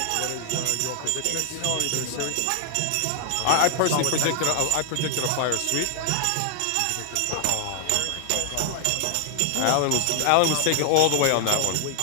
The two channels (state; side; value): different; both; correlation 0.00